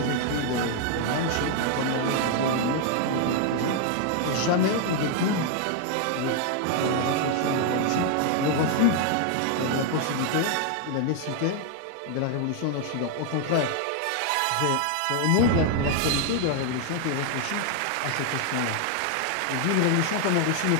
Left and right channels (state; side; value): different; both; correlation 0.00